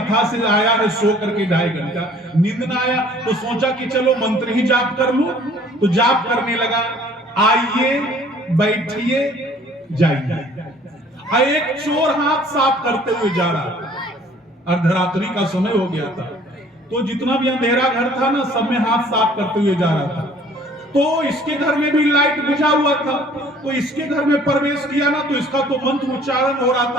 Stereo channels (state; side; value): normal; both; correlation 0.54